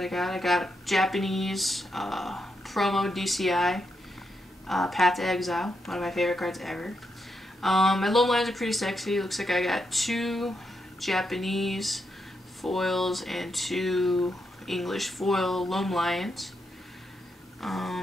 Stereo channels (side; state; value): both; normal; correlation 0.83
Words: I got. I got Japanese promo DCI Path to Exile, one of my favorite cards ever. My loam lines are pretty sexy. Looks like I got 2 Japanese foils and 2 English foil Loam Lions.